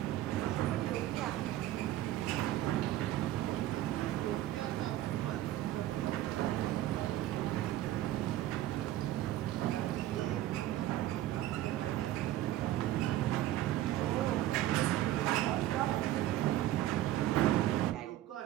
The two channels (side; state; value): left; quieter; 14.1 dB